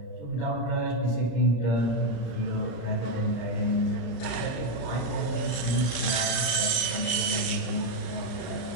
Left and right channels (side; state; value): right; late; 34 ms